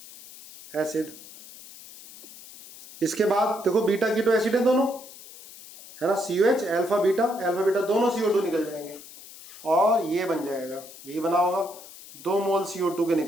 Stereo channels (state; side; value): noise; left; hiss, 18 dB below the sound